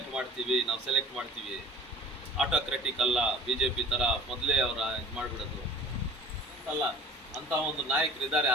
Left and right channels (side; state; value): both; normal; correlation 0.45